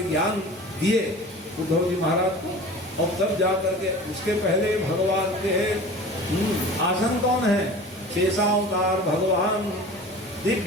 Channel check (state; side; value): normal; both; correlation 0.39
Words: ज्ञान दिए उद्धव जी महाराज को। और तब जा करके उसके पहले भगवान के आसन कौन है? शेषावतार भगवान